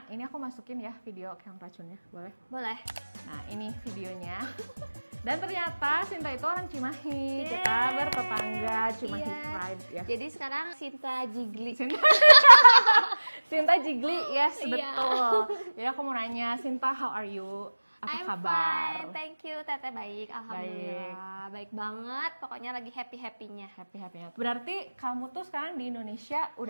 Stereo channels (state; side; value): inverted; both; correlation -1.00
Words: ini aku masukin ya video yang racunnya, boleh? Boleh. Nah, ini videonya. Dan ternyata Sinta itu orang Cimahi. Yeay. Kita bertetangga, Cimahi Iya. Pride ya. Jadi sekarang Sinta Jigli. Sinta Jigli, yes, Iya. betul. Jadi aku mau nanya, Sinta, how are you? Apa I'm kabar? fine, thank you. Teteh baik, alhamdulillah. Baik banget, pokoknya lagi happy-happynya. Happy-happynya. Berarti kamu tuh sekarang di Indonesia